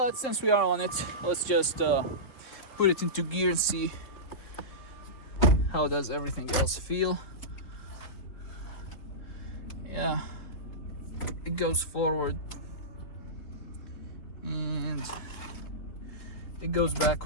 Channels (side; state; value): right; late; 3.6 ms